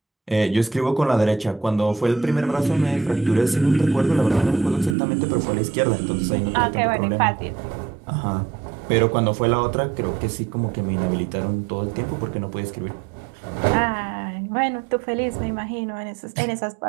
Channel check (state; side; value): drops out; left; at 5.0 s